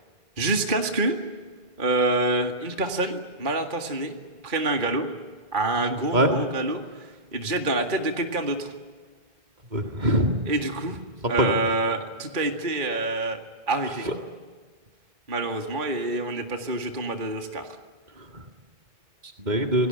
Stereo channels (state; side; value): late; left; 2.4 ms